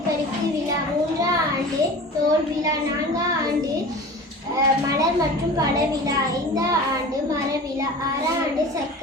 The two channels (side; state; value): both; normal; correlation 0.37